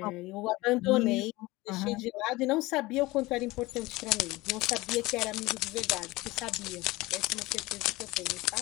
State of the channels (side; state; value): right; quieter; 20.6 dB